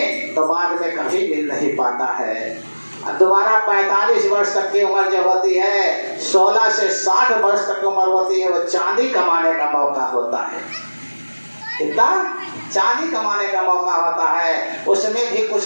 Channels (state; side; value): inverted; both; correlation -1.00